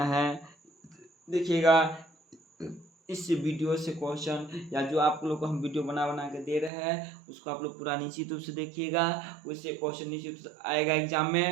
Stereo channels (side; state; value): left; drops out; at 6.7 s